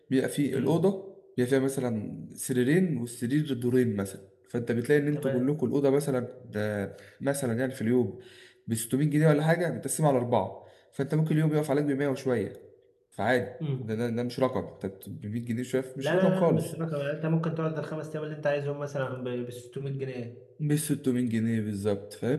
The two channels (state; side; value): identical; both; correlation 1.00